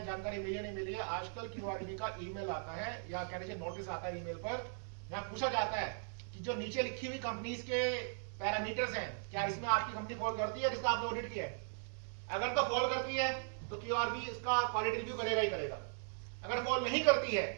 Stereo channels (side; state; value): left; silent; digital silence